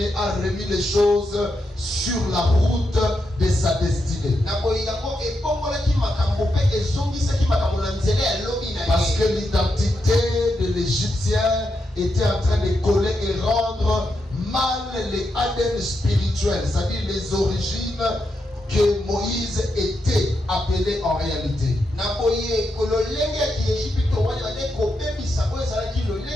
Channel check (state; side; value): normal; both; correlation 0.84